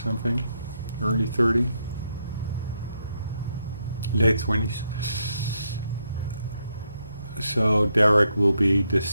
early 30, late 20s. So Derek will be the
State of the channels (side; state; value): both; inverted; correlation -0.79